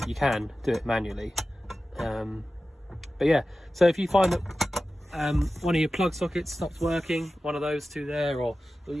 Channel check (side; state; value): both; normal; correlation 0.94